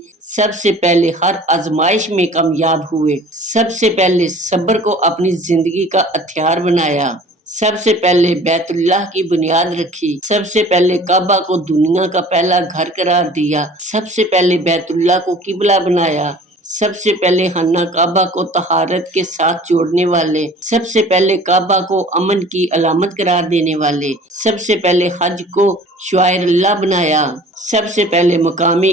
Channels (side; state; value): both; normal; correlation 0.47